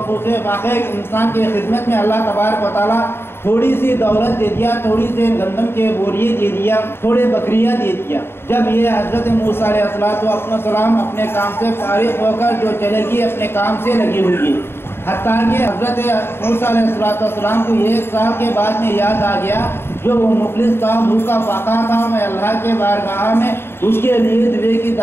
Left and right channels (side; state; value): right; late; 0.11 ms